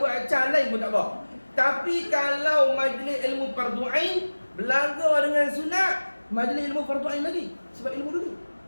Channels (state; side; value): inverted; both; correlation -1.00